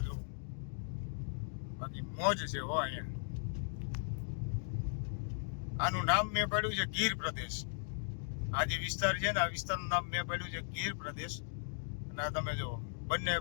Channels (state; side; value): silent; right; digital silence